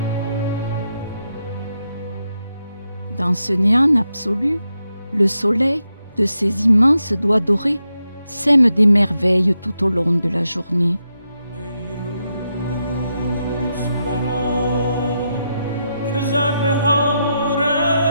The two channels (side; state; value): both; inverted; correlation -0.84